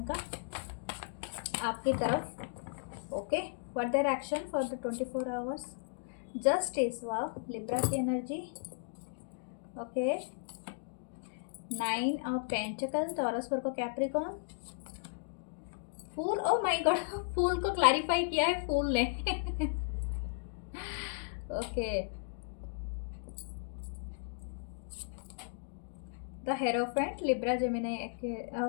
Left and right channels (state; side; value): silent; right; digital silence